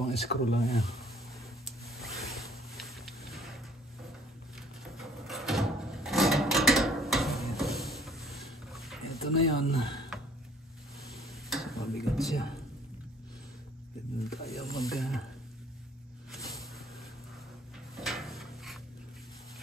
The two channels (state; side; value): normal; both; correlation 0.57